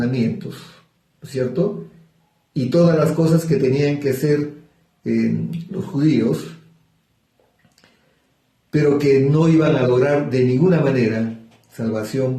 ¿no es cierto? Y todas las cosas que tenían que hacer los judíos, pero que no iban a lograr de ninguna manera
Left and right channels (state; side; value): identical; both; correlation 1.00